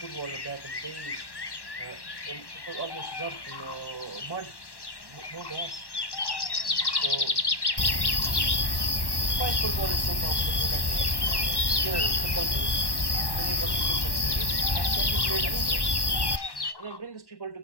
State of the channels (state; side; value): late; right; 1.1 ms